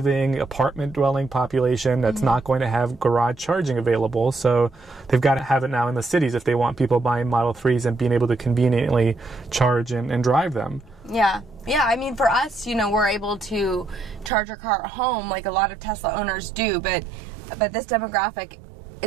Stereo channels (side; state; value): left; drops out; at 14.3 s